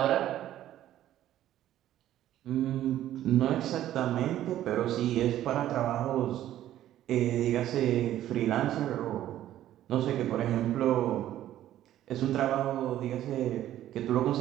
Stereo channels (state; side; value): quieter; left; 12.7 dB